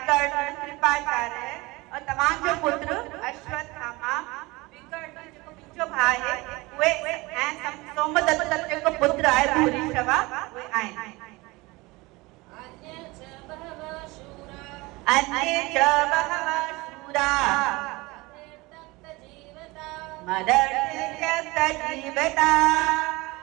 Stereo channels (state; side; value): quieter; left; 22.7 dB